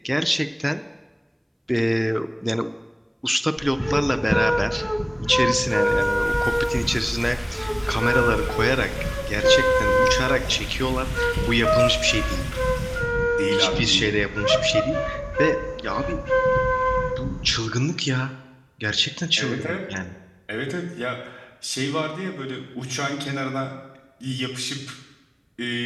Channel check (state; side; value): identical; both; correlation 1.00